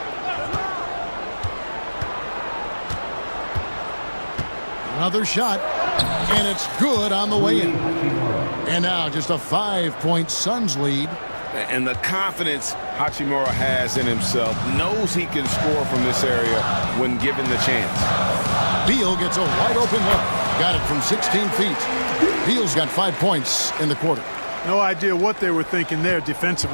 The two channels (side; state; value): both; inverted; correlation -1.00